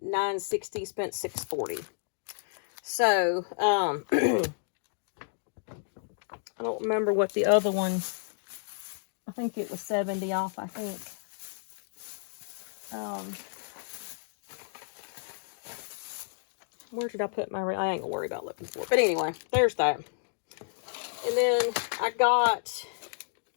$9.60, spent $6.40. So, I don't remember what the other one, I think it was 70 off, I think. Where did I put my, I ain't gonna worry about looking for it. But anyway, there's that. And then I got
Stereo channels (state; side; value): silent; right; digital silence